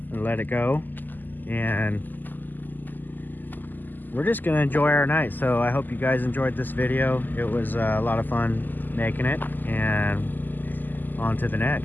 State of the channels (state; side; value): late; right; 0.087 ms